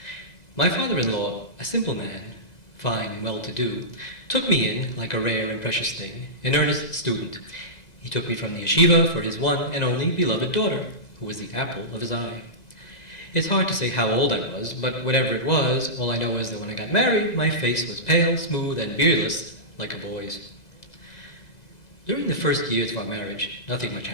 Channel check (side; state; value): right; late; 2.0 ms